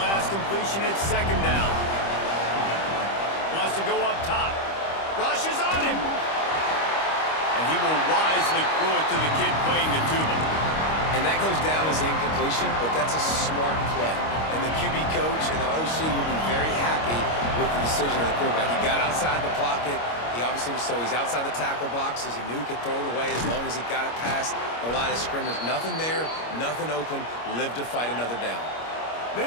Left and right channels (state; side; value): late; right; 25 ms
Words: completion, it's second down. Wants to go up top. Rushes on him. And he will wisely throw it to the kid playing the tuba. And that goes down as an incompletion, but that's a smart play. And the QB coach and the OC will be very happy with the decision of the quarterback. He got outside the pocket. He obviously was he's outside the tackle boxes. He knew he could throw it away as long as he got it past the line of scrimmage. Nothing there, nothing open. Live to fight another down.